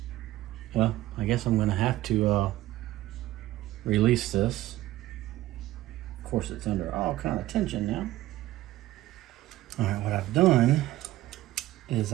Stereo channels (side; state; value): left; quieter; 15.6 dB